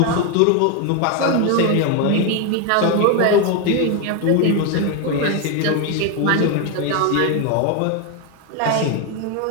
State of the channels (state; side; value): different; both; correlation 0.01